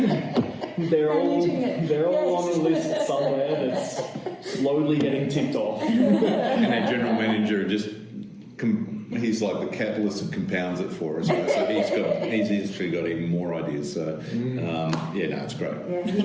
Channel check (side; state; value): both; identical; correlation 1.00